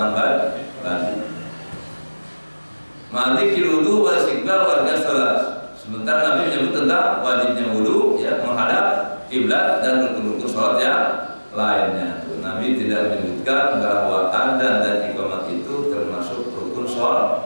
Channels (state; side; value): inverted; both; correlation -1.00